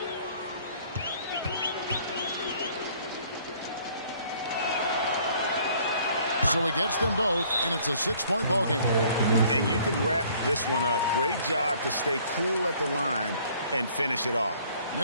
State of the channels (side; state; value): both; inverted; correlation -0.58